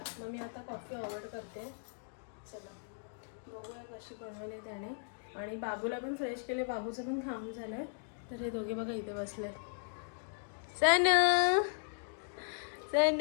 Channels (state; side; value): silent; right; digital silence